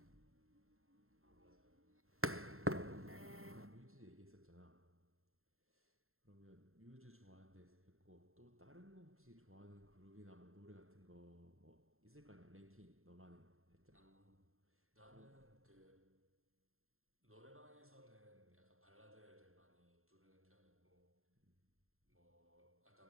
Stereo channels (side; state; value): left; late; 0.62 ms